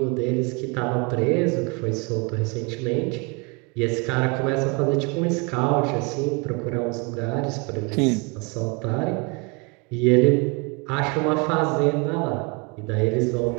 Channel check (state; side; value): quieter; left; 30.6 dB